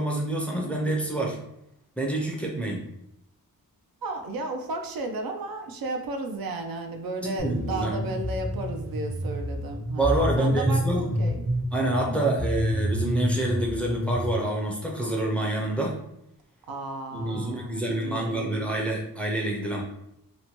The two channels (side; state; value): both; normal; correlation 0.57